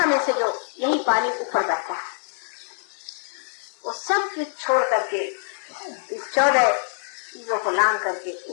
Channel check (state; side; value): silent; right; 62 dB below the other